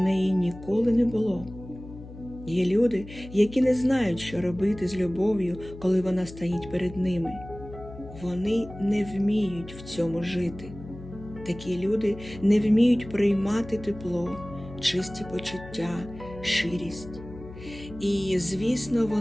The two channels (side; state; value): left; noise; hum, 15 dB below the sound